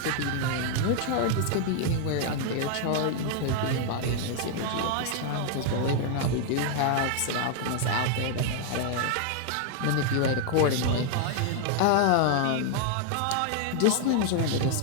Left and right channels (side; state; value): both; different; correlation 0.00